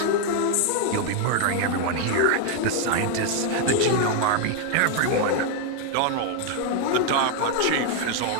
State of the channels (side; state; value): both; different; correlation 0.01